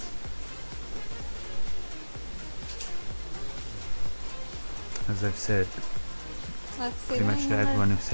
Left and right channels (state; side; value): inverted; both; correlation -1.00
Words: As I've said, Let's see pretty the much to winning number. everyone who's